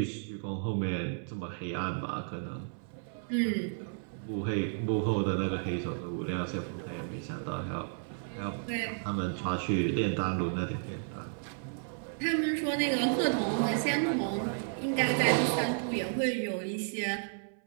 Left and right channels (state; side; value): silent; left; 56 dB below the other